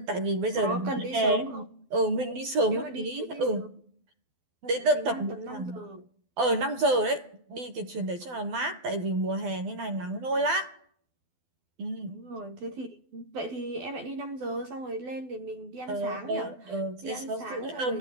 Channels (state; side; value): late; left; 12 ms